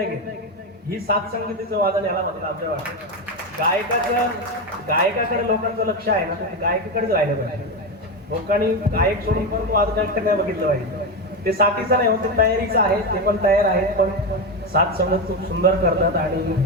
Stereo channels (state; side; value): normal; both; correlation 0.13